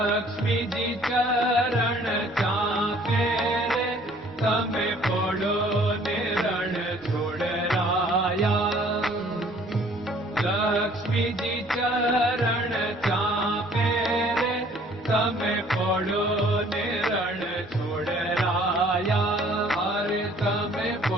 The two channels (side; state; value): both; normal; correlation 0.57